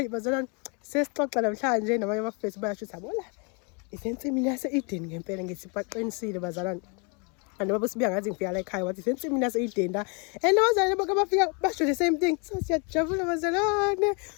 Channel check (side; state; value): right; quieter; 34.4 dB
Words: bazalwane sesixoxa namhlanje nabanye abafethu bayasho ukuthi abola isensimini yase-Eden ngempela ngithi baqinisile bazalwane. And baba sibuya ngathi ngifika la ekhaya wathi sensimini yase-Eden la and abazalwane bonke abafika basho the same thing. So siyajabula bazalwane